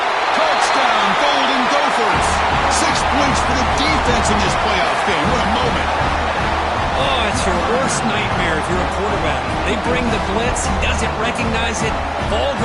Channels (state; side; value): identical; both; correlation 1.00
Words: Touchdown, Golden Gophers. 6 points for the defense in this playoff game. What a moment. Oh, it's your worst nightmare if you're a quarterback. They bring the blitz. He doesn't recognize it. Ball